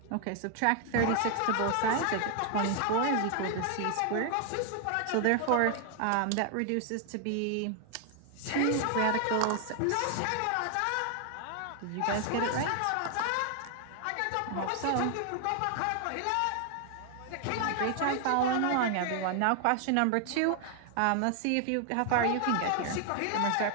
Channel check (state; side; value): different; both; correlation 0.00